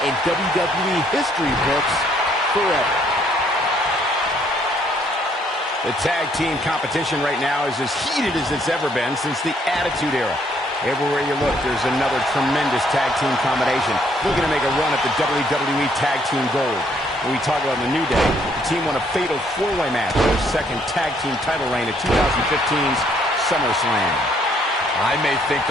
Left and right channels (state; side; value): normal; both; correlation 0.67